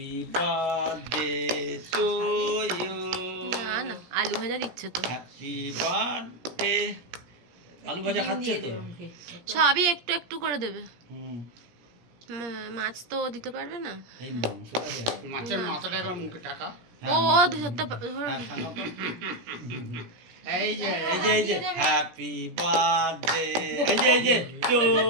birthday to you. না না, আলু ভাজা দিচ্ছে তো। Happy birthday. আলু ভাজা খাচ্ছে তো। সবই একটু একটু করে দেবে। হুম, মাছ তো দিতে পারবে না। এই মাংসটা দে। মাছের মাথাটা একবার মুখে টাকা। ও ধরতে হ্যাঁ, খাও তো। এই যে এই যে হ্যাপি বার্থডে, এই যে টু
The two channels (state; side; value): late; left; 17 ms